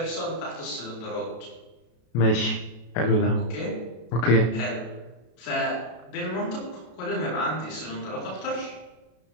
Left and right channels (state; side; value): late; right; 33 ms